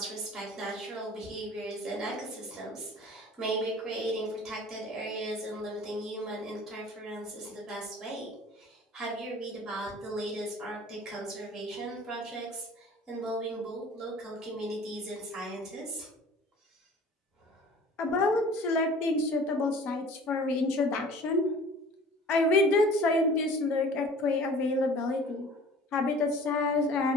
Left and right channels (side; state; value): both; normal; correlation 0.46